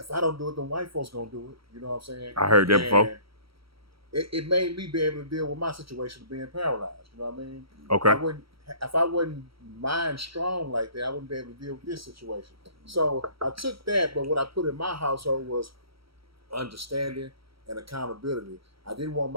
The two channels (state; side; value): late; left; 0.75 ms